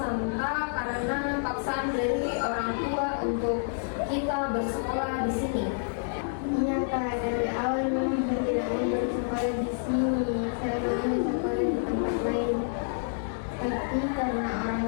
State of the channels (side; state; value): right; silent; 59 dB below the other